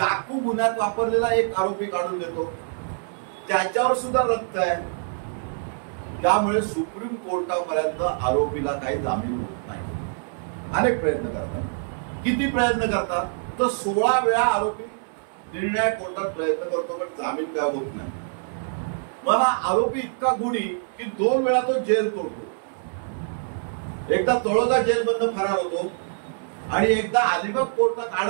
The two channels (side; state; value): left; silent; 62 dB below the other